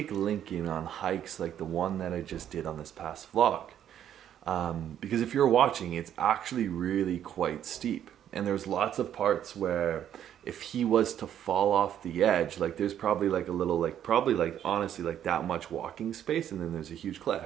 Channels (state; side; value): quieter; left; 10.2 dB